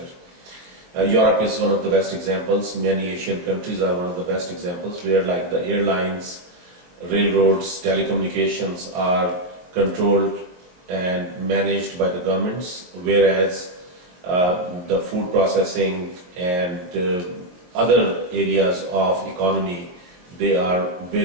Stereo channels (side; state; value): left; late; 22 ms